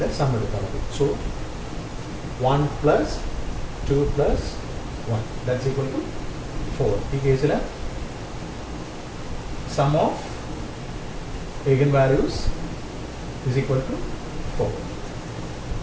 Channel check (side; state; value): both; identical; correlation 1.00